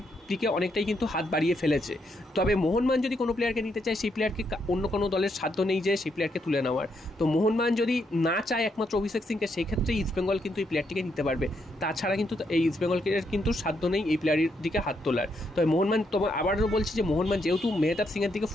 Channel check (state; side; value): normal; both; correlation 0.78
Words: দিকে অনেকটাই কিন্তু হাত বাড়িয়ে ফেলেছে। তবে মোহনবাগান যদি কোনো প্লেয়ারকে নিতে চায়, সেই প্লেয়ারকে অন্য কোনো দলের সাধ্য নেই যে সেই প্লেয়ারকে তুলে নেওয়ার। তো মোহনবাগান যদি না চায় একমাত্র অভিষেক সিংকে, সেই ক্ষেত্রে ইস্ট বেঙ্গল কিন্তু এই প্লেয়ারটিকে নিতে পারবে। তাছাড়া কিন্তু এই ইস্ট বেঙ্গলকে কিন্তু সাধ্য নেই এই প্লেয়ারের দিকে হাত তোলার। তবে মোহনবাগান, তোমার আবারও বলছি যে মোহনবাগান যেহেতু মেহতাব সিংয়ের দিকে